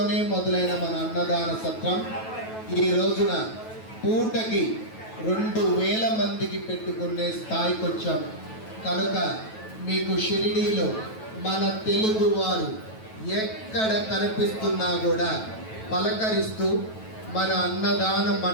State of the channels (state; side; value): late; right; 9.2 ms